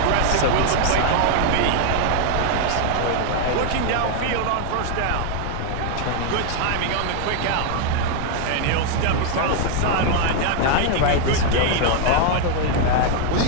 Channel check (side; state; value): both; different; correlation 0.00